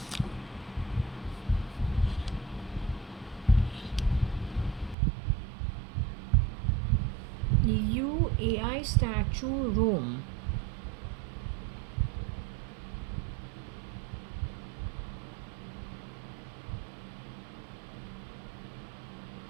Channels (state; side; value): drops out; left; at 5.0 s